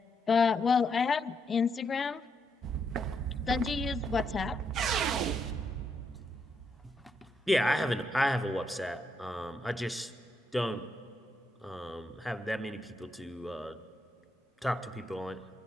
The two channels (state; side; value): normal; both; correlation 0.79